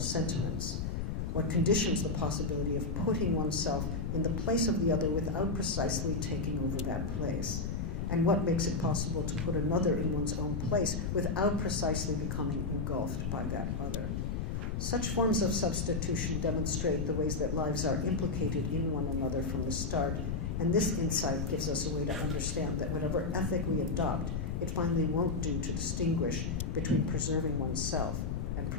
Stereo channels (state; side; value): noise; left; rumble, 2 dB below the sound